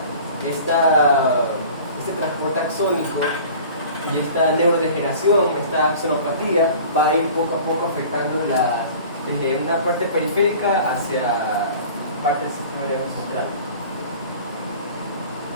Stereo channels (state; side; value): inverted; both; correlation -0.43